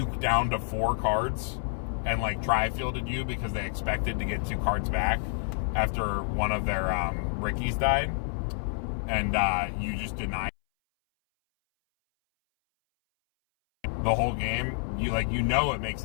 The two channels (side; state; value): right; silent; 59 dB below the other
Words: down to 4 cards and like tri-fielded you because they expected to get 2 cards back after one of their Rickies died, and you just denied the whole game? You know it makes